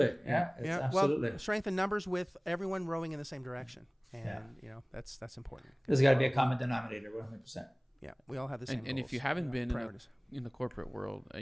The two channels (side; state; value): both; identical; correlation 1.00